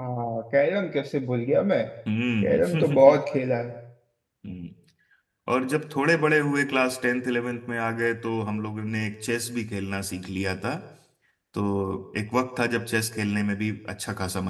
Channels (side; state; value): both; identical; correlation 1.00